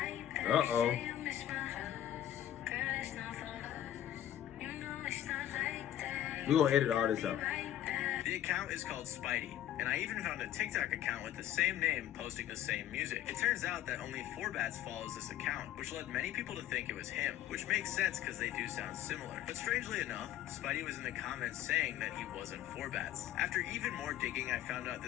back. Say you miss my hugs. Girl, it's not for us. You know it's not like that. We gonna edit all this out. Right back. The account is called Spidey, and I even found a TikTok account with the same name posting the same music. It turns out that only 4BATZZ follows this account, which led many people to think it was him, which makes sense because they do sound similar. But strangely enough, Spidey was in the comments saying that he wasn't 4BATZZ. After even more digging, I found out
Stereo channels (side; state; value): right; quieter; 11.9 dB